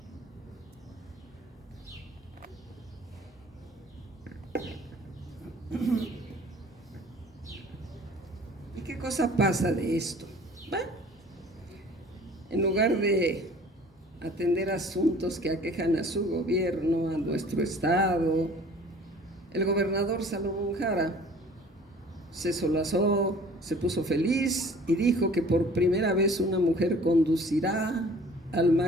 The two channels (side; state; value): both; normal; correlation 0.49